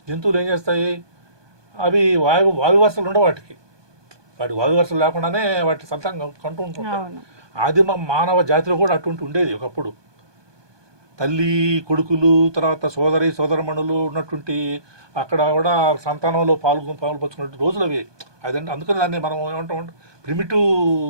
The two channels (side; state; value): left; late; 1.2 ms